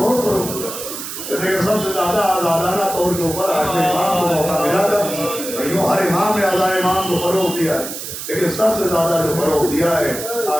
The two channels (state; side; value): noise; right; hiss, 8 dB below the sound